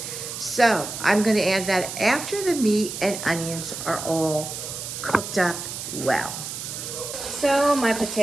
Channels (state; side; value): noise; right; hiss, 7 dB below the sound